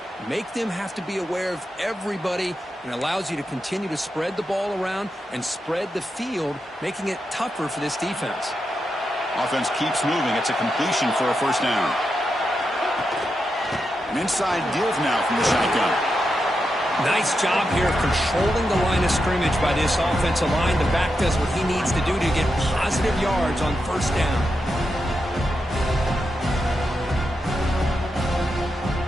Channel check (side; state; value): both; normal; correlation 0.87